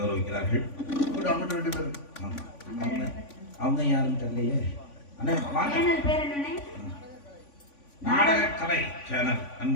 ரெண்டு பேரும் ஆமா. அவங்க யாரும் தெரியலையே. நாடக கலை சேனல்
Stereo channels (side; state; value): right; late; 3.5 ms